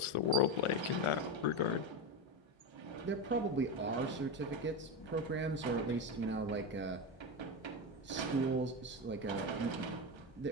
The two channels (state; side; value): normal; both; correlation 0.16